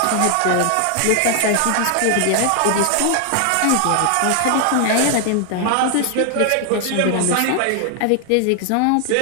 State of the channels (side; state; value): both; different; correlation 0.00